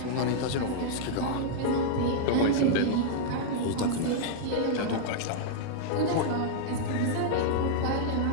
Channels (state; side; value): different; both; correlation -0.01